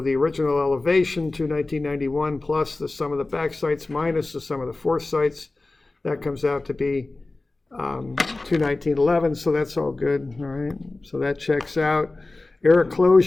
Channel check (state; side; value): quieter; right; 3.2 dB